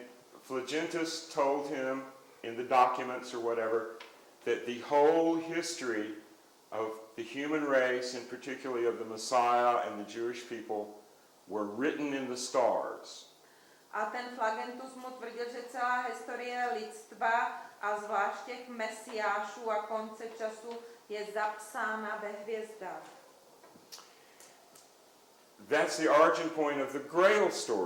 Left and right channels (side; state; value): both; identical; correlation 1.00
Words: Phlogistus told him in the documents or whatever that the whole history of the human race, and particularly of the Messiah and the Jewish people, were written in the stars. A ten Flagentus mu tvrdil, že celá historie lidstva a zvlášť těch mesiášů a konce času je zapsána ve hvězdách. That's the origin point of the Grail